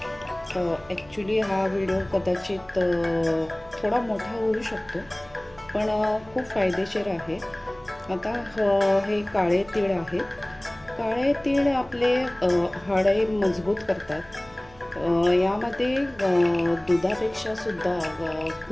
ॲक्च्युली हा व्हिडिओ कदाचित थोडा मोठा होऊ शकतो पण खूप फायदेशीर आहे. आता हे काळे तीळ आहेत. काळे तीळ आपले हाडे मजबूत करतात. यामध्ये दुधापेक्षा सुद्धा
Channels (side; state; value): right; noise; hum, 25 dB below the sound